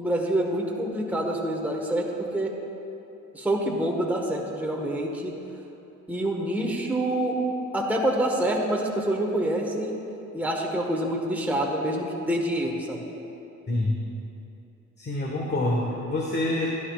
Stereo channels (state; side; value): normal; both; correlation 0.58